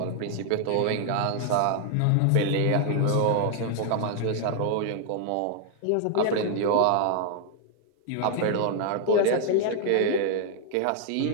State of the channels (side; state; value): both; different; correlation 0.00